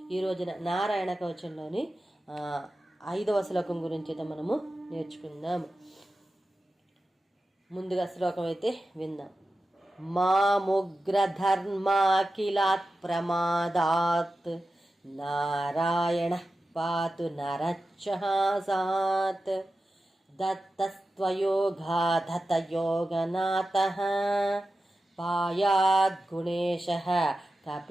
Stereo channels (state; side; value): normal; both; correlation 0.93